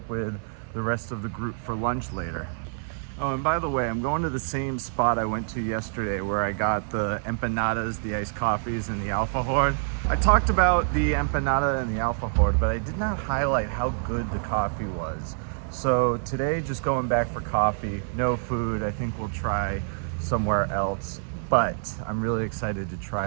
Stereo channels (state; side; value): silent; left; 55 dB below the other